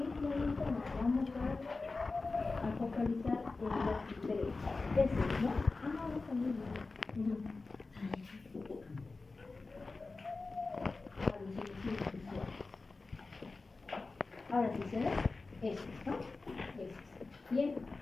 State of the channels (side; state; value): right; quieter; 3.7 dB